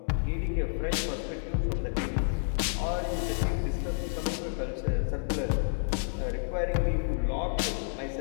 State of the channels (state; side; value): silent; right; 58 dB below the other